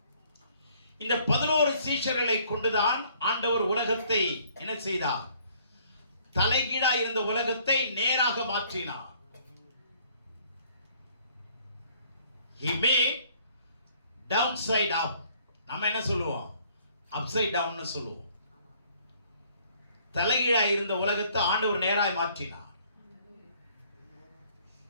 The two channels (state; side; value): inverted; both; correlation -0.61